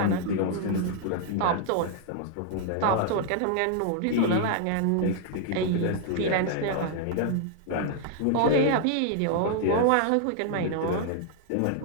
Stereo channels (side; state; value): both; different; correlation -0.01